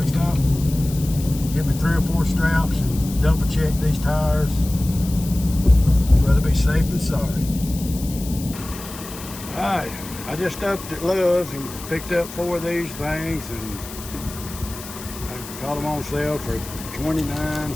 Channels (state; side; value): noise; left; hiss, 13 dB below the sound